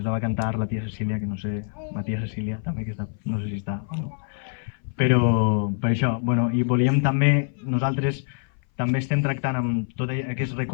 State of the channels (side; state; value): right; silent; 58 dB below the other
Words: la va cantar la tia Cecília, que no sé, la tia Cecília també, que està, no sé si està o no. Però per això, bueno, i volíem també, nosaltres també estem tractant amb tot aquest